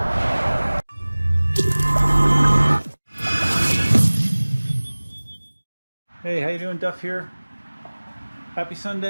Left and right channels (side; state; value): both; inverted; correlation -1.00